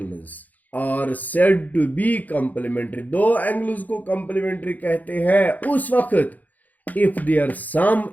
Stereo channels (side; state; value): right; late; 0.080 ms